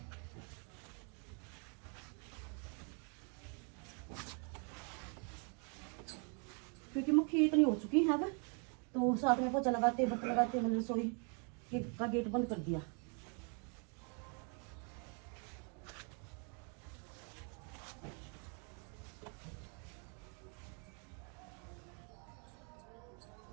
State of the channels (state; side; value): quieter; left; 37.7 dB